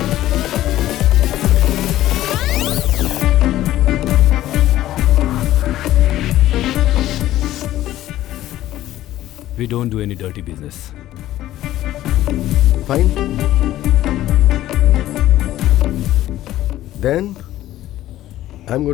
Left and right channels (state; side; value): quieter; right; 14.2 dB